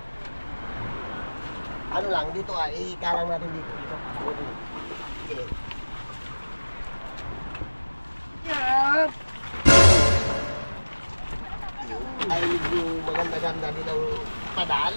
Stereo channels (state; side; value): inverted; both; correlation -1.00